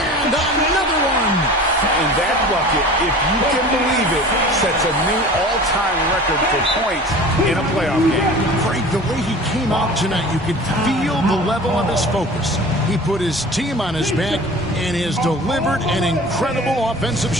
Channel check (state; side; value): normal; both; correlation 0.40